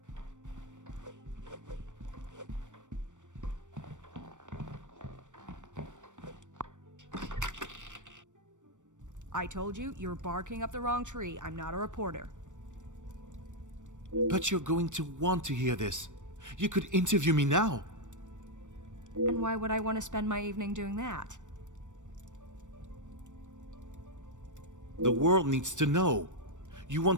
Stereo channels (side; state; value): left; late; 0.85 ms